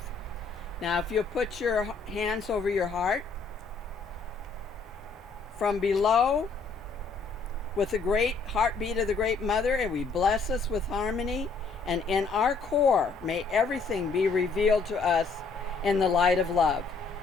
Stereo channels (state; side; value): quieter; right; 4.5 dB